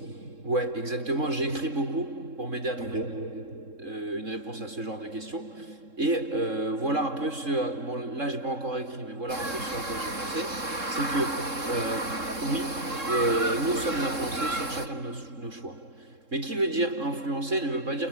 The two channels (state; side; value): late; left; 3.7 ms